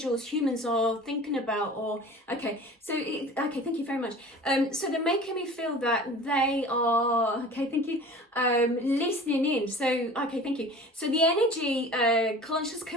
humans are thinking about, or okay, so okay, thank you very much. So they're making me feel that they are, okay, thank you, listening in. So okay, thank you. So the energy conscious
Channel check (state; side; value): normal; both; correlation 0.41